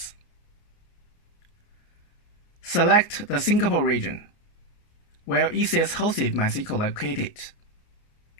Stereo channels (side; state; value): right; late; 29 ms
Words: Select the Singapore region, where ECS-hosted MySQL located.